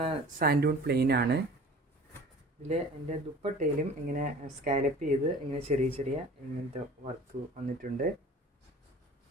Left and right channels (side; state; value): both; normal; correlation 0.44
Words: സാൻഡൂൺ പ്ലെയിൻ ആണ്. ഇതിൽ എൻ്റെ ദുപ്പട്ടയിലും ഇങ്ങനെ സ്കാലപ്പ് ചെയ്ത് ഇങ്ങനെ ചെറിയ ഇങ്ങനത്തെ വർക്ക് വന്നിട്ടുണ്ട്.